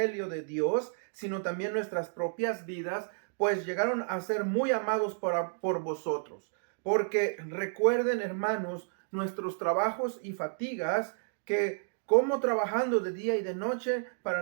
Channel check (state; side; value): silent; left; digital silence